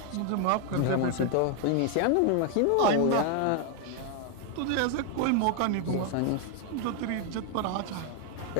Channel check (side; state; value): both; different; correlation 0.01